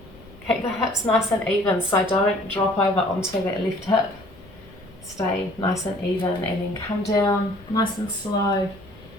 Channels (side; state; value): left; noise; rumble, 24 dB below the sound